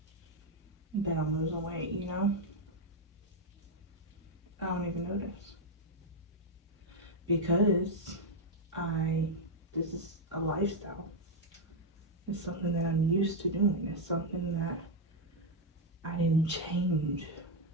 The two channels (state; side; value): normal; both; correlation 0.01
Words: that I'm losing weight, you know? I don't even notice. Because this is a lifestyle. It's something that I'm used to doing. It's something that I didn't change